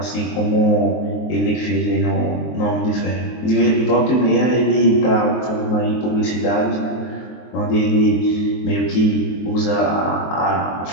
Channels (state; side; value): late; right; 23 ms